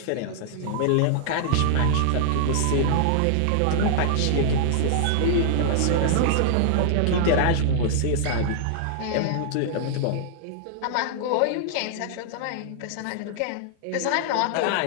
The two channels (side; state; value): both; different; correlation -0.01